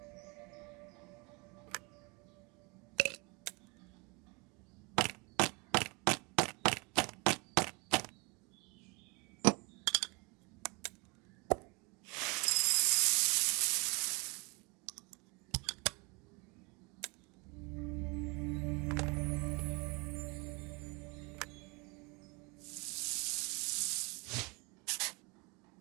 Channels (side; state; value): left; quieter; 29.1 dB